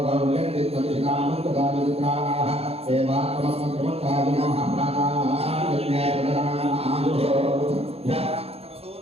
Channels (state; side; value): late; left; 0.29 ms